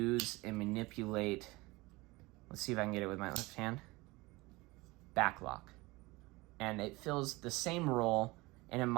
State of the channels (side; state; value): left; quieter; 22.4 dB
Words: and manipulate, let's see if I can get it with my left hand, back lock. And it fills the same role, and in